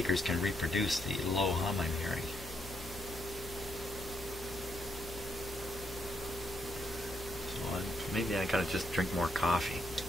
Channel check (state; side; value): normal; both; correlation 0.77